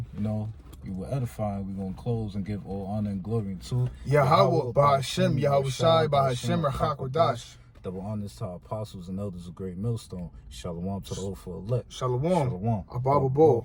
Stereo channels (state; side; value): identical; both; correlation 1.00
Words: you know, you were edifying. We're going to close and give all honor and glory to Yahweh, Ba'Hashem, Yahweh Shai, Ba'Hashem, Rachakodash. Double honors to our apostles and elders of Great Millstone. Shalom to the Lord for elect. Shalom. Shalom. Abba Bo.